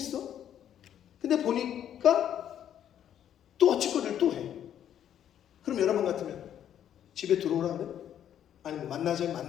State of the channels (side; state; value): right; quieter; 10.1 dB